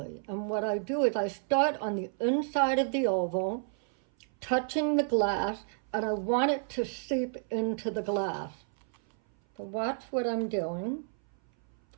And what I do is I start on the inside of the oval, touching the glass, and I want it to seep into the glass. So watch what I'm doing,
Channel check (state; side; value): silent; left; 57 dB below the other